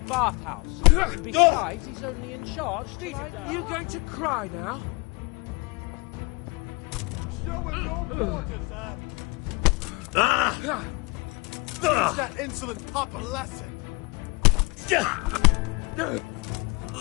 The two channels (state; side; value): quieter; right; 27.6 dB